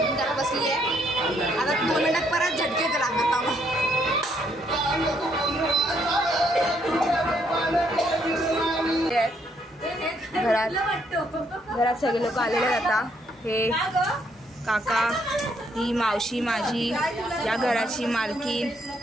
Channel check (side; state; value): both; normal; correlation 0.71